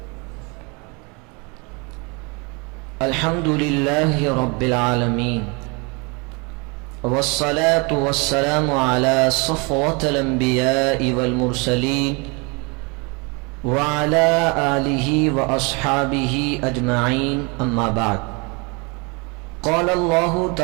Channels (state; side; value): quieter; left; 30.5 dB